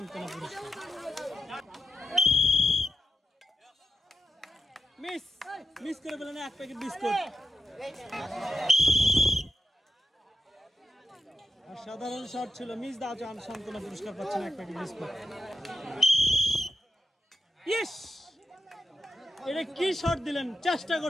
পুরস্কার। মিস করে পেলেন এক প্যাকেট বিস্কুট। সাধারণ শট ছিল মিস দাও চান সান্ত্বনা পুরস্কার পাচ্ছেন এক প্যাকেট বিস্কুট। ইস এটা কি শট দিলেন চেষ্টা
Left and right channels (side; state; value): both; normal; correlation 0.89